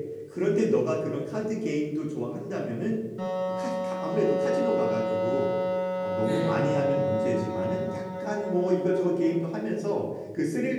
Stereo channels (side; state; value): both; identical; correlation 1.00